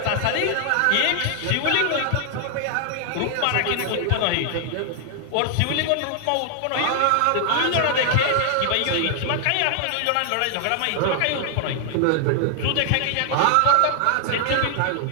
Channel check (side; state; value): both; different; correlation 0.00